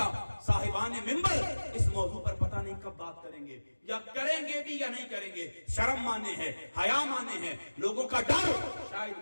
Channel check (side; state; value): both; inverted; correlation -1.00